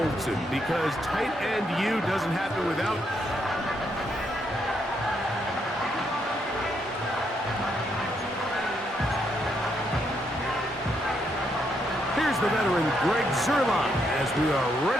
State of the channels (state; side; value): normal; both; correlation 0.77